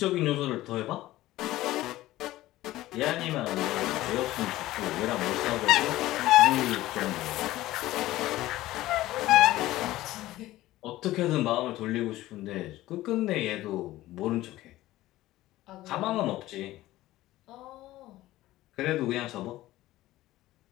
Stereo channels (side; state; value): right; quieter; 16.3 dB